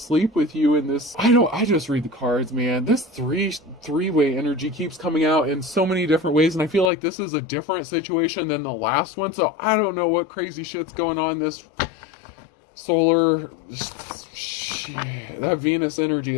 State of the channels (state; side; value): drops out; right; at 6.9 s